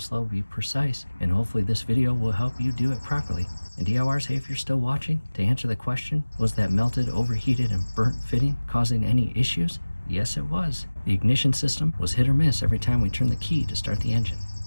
be precise, and hopefully this video will help you do it properly. And DIYers, hey, if you're still watching, to answer the question, was that melted, overheated, and burnt fitting causing any issues? Yes, it was. The ignition system was hit or miss every time we turned the key to start the engine.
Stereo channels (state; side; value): inverted; both; correlation -1.00